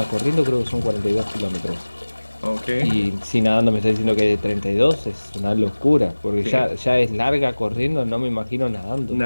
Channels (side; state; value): both; inverted; correlation -1.00